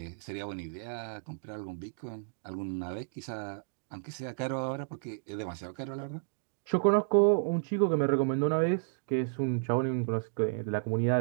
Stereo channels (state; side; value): silent; left; digital silence